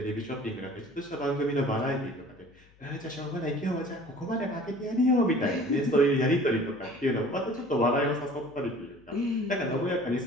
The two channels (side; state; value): left; noise; hum, 29 dB below the sound